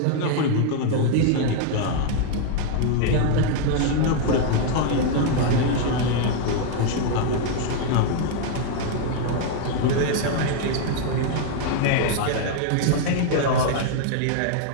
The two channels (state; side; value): different; both; correlation 0.00